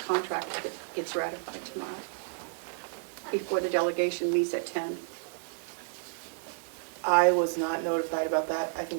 contract that gets ratified tomorrow, before the delegation meets at 10. I was not notified about that. I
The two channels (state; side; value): silent; left; 57 dB below the other